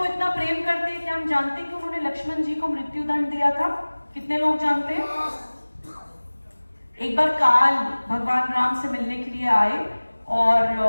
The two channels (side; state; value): both; inverted; correlation -1.00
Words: इतना प्रेम करते हैं, क्या हम जानते हैं कि उन्होंने लक्ष्मण जी को मृत्यु दंड दिया था? कितने लोग जानते हैं? एक बार काल भगवान राम से मिलने के लिए आए और